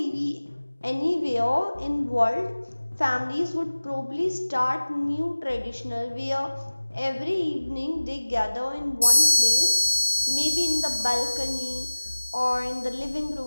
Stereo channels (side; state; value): both; inverted; correlation -1.00